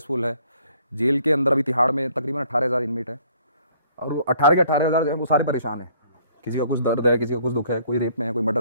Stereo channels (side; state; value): both; inverted; correlation -0.61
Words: है। जेल के अंदर अभी तिहाड़ में तकरीबन 18,000 इनमेट है और वो 18 के 18,000 जो है वो सारे परेशान हैं। किसी का कुछ दर्द है, किसी का कुछ दुख है, कोई रेप में है, कोई